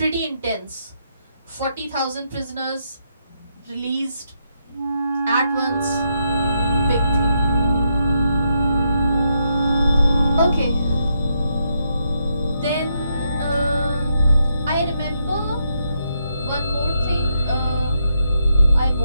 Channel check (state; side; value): inverted; both; correlation -0.80